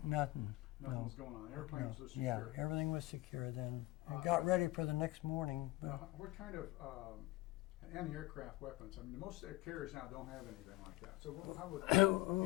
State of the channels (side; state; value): right; quieter; 19.5 dB